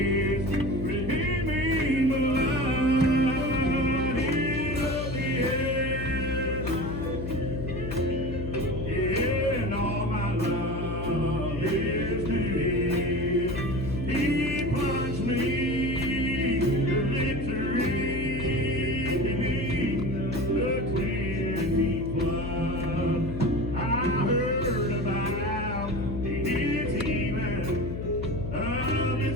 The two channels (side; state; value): left; noise; hum, 5 dB below the sound